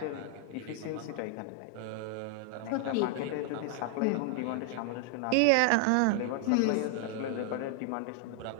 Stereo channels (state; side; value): different; both; correlation 0.00